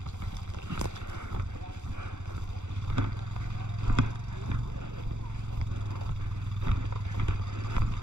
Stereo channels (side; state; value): left; late; 0.84 ms